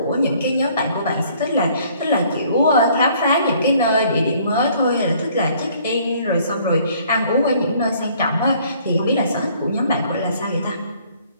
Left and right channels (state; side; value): inverted; both; correlation -0.60